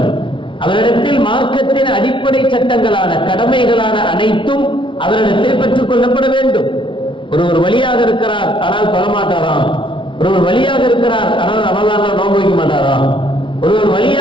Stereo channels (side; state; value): right; late; 0.25 ms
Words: அவரிடத்தில் மார்க்கத்தின் அடிப்படை சட்டங்களான கடமைகளான அனைத்தும் அவரிடத்தில் பெற்றுக் கொள்ளப்பட வேண்டும். ஒருவர் வழியாக இருக்கிறார் ஆனால் தொழமாட்டாராம், ஒருவர் வழியாக இருக்கிறார் ஆனால் ரமலான்ல நோன்பு வைக்க மாட்டாராம், ஒருவர்